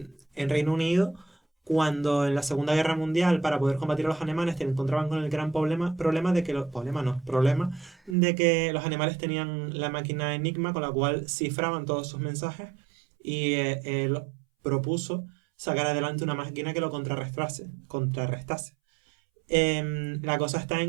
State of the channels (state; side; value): drops out; left; at 8.2 s